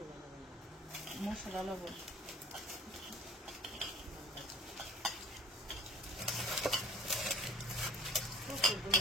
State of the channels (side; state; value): both; normal; correlation 0.46